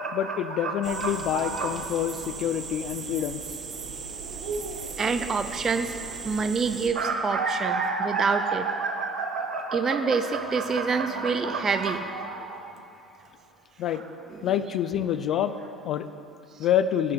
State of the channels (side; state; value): both; normal; correlation 0.49